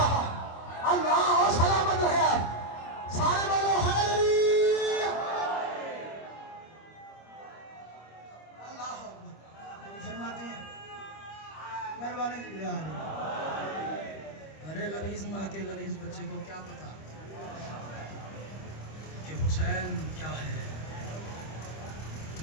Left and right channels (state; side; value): late; right; 25 ms